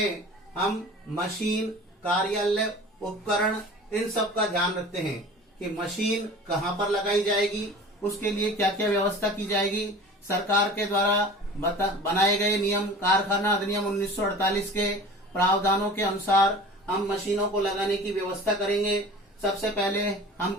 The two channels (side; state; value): both; normal; correlation 0.40